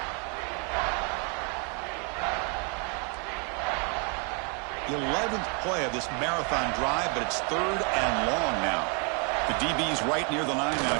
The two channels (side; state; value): left; quieter; 35.6 dB